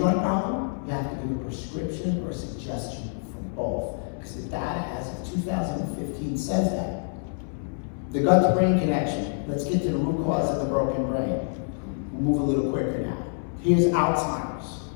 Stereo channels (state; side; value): silent; right; 60 dB below the other